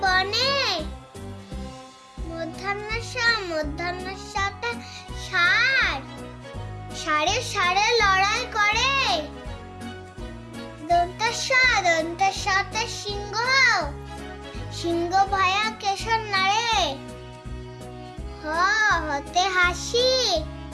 বনে। মধ্যাহ্নসা, মধ্যাহ্নসাতে ষাঁড়, ষাঁড়ে ষাঁড়ে লড়াই করে। দন্তাসা, দন্তাসাতে সিংহ, সিংহ ভয়া কেশর নাড়ে। হ হতে হাসি,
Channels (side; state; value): both; identical; correlation 1.00